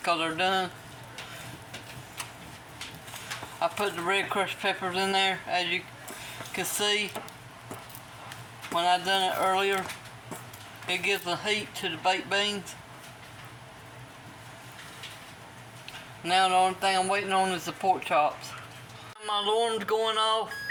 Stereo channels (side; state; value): both; identical; correlation 1.00